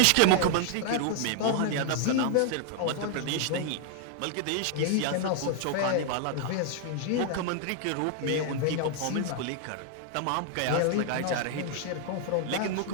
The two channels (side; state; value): both; different; correlation 0.00